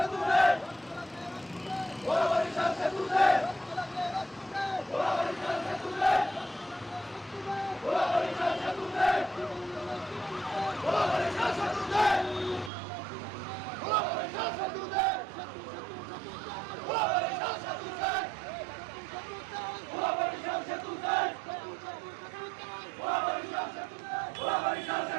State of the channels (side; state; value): left; drops out; at 12.7 s